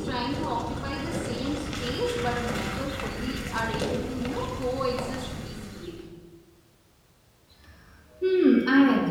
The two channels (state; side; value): identical; both; correlation 1.00